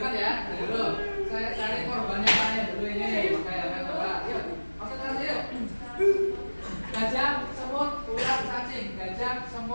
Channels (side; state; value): both; inverted; correlation -1.00